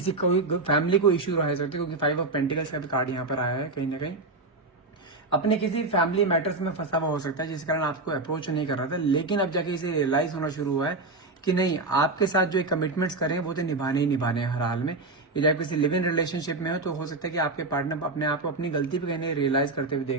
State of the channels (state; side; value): quieter; left; 3.3 dB